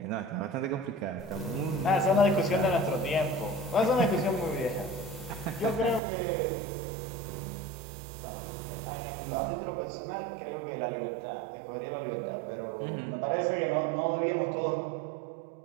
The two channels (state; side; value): drops out; left; at 6.0 s